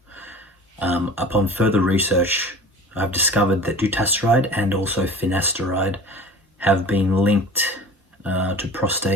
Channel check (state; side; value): normal; both; correlation 0.40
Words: Upon further research, I've discovered that dutasteride and also finasteride have been linked to